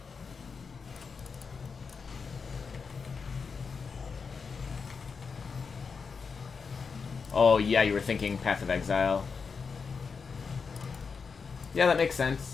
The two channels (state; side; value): quieter; right; 5.4 dB